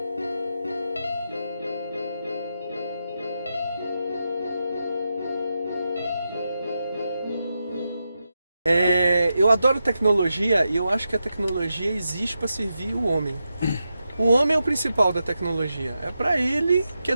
Eu adoro tecnologia e eu acho que a tecnologia existe para servir o homem. O homem é o principal da tecnologia. É para ele que a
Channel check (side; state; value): both; inverted; correlation -0.88